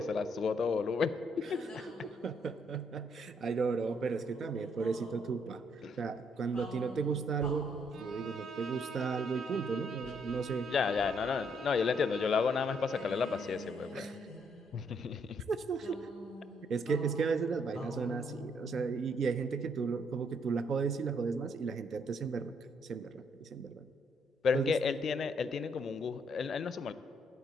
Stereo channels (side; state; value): both; normal; correlation 0.71